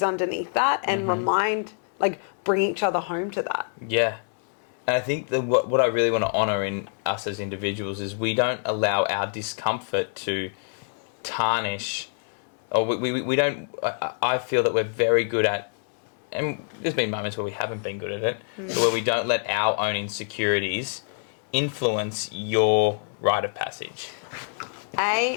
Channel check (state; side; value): silent; right; 59 dB below the other